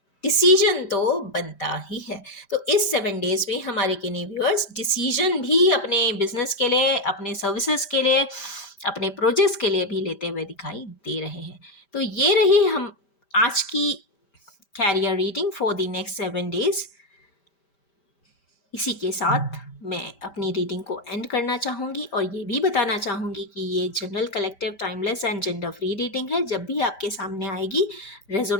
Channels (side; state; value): right; late; 5.1 ms